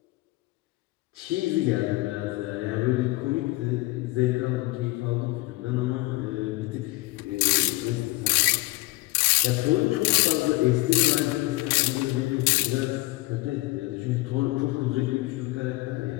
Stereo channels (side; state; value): right; quieter; 21.2 dB